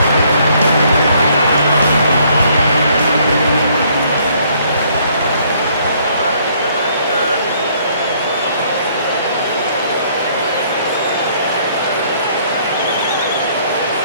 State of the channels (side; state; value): both; inverted; correlation -0.64